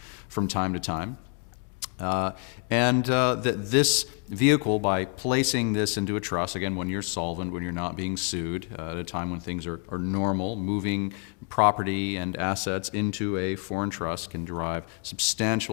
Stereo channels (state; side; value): quieter; right; 37.9 dB